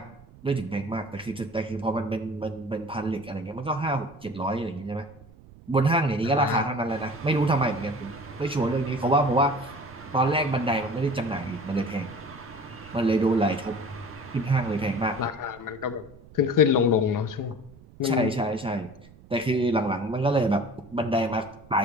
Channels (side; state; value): right; noise; rumble, 22 dB below the sound